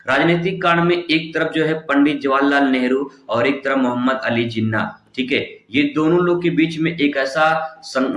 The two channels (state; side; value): identical; both; correlation 1.00